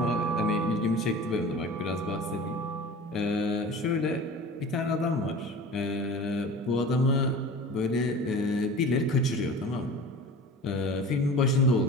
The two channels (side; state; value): both; normal; correlation 0.38